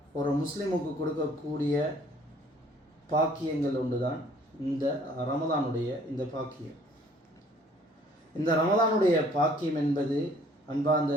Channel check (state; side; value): normal; both; correlation 0.57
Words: ஒரு முஸ்லிமுக்கு கொடுக்கக்கூடிய பாக்கியங்கள் ஒன்று தான் இந்த ரமதானுடைய இந்த பாக்கியம். இந்த ரமதானுடைய பாக்கியம் என்பது அன்பார்ந்த